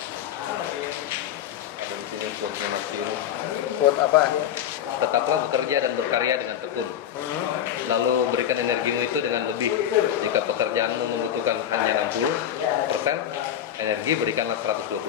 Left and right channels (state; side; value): quieter; right; 10.2 dB